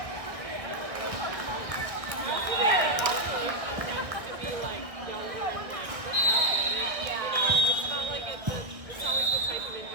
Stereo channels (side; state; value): left; late; 1.5 ms